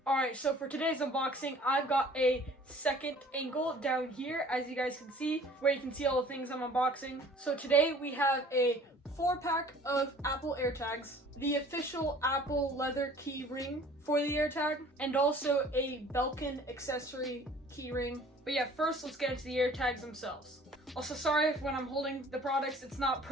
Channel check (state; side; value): normal; both; correlation 0.51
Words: Alright, so for today's unboxing, I've got a second angle down here, as you guys can see, where you can see all the things I'm unboxing. So today we have a 4-pack of Apple AirTags, the official Apple leather key ring for the AirTag, and also a Belkin accessory key ring. But yeah, first let's get into the AirTags themselves. Also, sorry if when I'm holding the products, it's not